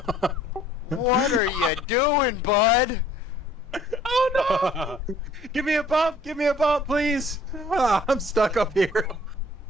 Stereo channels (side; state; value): both; normal; correlation 0.57